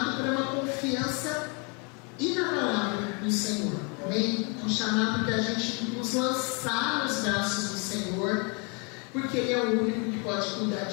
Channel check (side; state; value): right; quieter; 33.6 dB